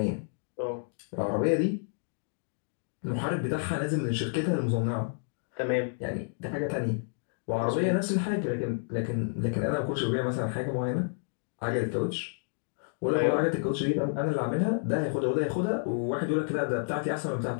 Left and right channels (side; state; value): right; silent; digital silence